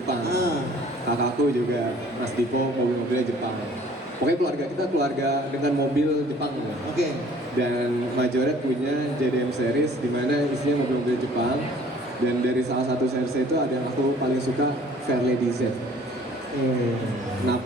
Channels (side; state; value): both; normal; correlation 0.54